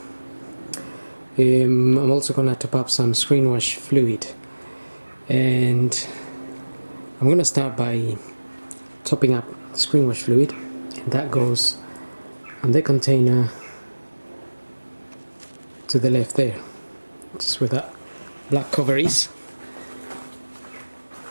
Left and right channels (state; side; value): inverted; both; correlation -1.00